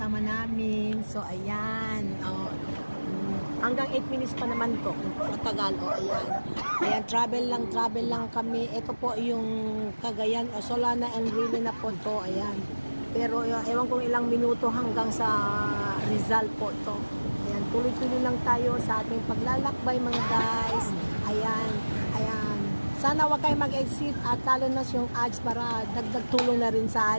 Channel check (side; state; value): both; inverted; correlation -1.00